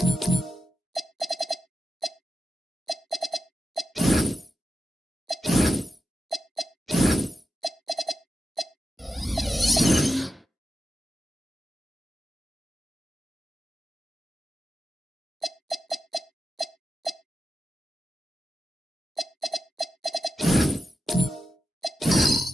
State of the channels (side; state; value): both; normal; correlation 0.91